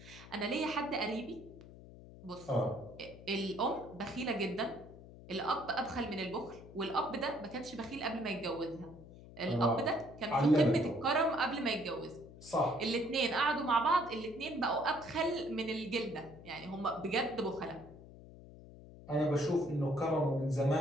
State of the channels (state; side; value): noise; left; hum, 17 dB below the sound